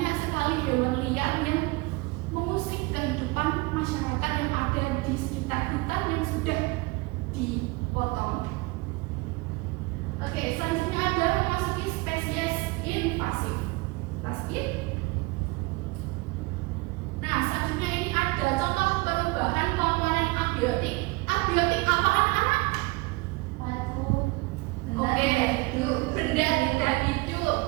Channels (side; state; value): left; quieter; 24.4 dB